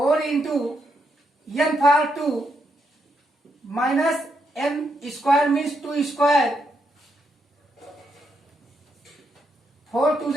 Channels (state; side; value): normal; both; correlation 0.79